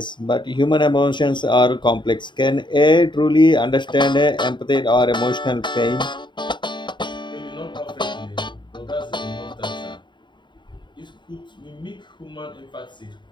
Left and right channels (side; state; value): right; late; 0.22 ms